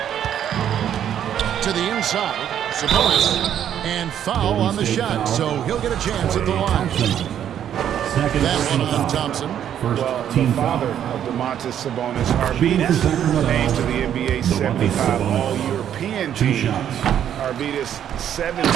To the inside, Sabonis, and foul on the shot, so he'll get a chance at the line. That one on Thompson. Well, the father of Domantas Sabonis, Arvidas, named to the NBA 75 All-European team. Arvidas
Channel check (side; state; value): left; quieter; 9.9 dB